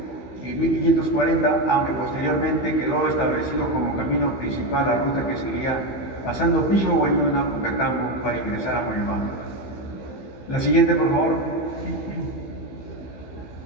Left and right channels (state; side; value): late; right; 15 ms